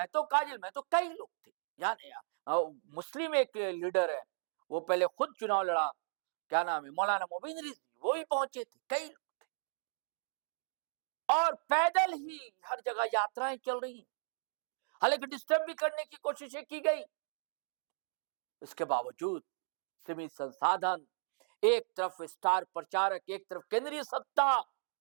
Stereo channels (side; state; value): left; silent; digital silence